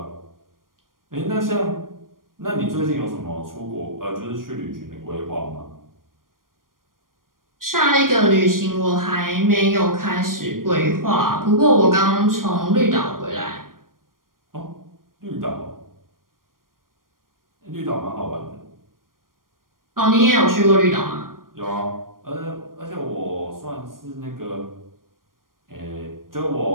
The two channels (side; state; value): left; late; 0.91 ms